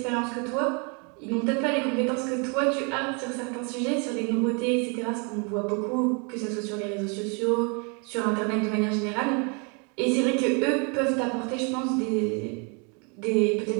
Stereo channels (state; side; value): quieter; left; 35.0 dB